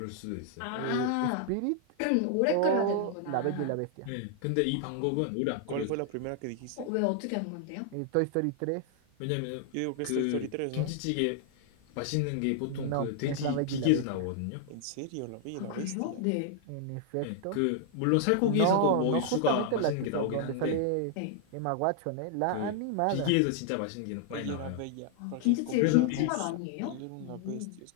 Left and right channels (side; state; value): both; different; correlation 0.00